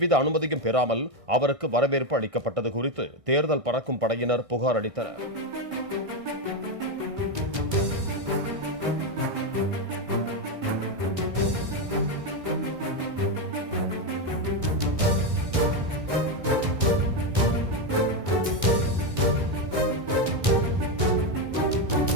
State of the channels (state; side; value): late; left; 1.6 ms